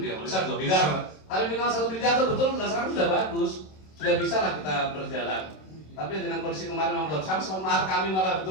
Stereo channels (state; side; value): late; right; 27 ms